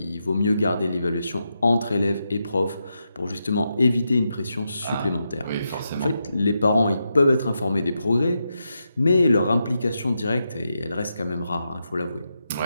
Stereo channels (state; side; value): inverted; both; correlation -0.85